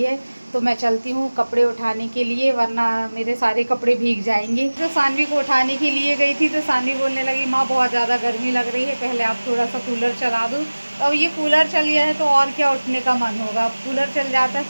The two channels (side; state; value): both; inverted; correlation -1.00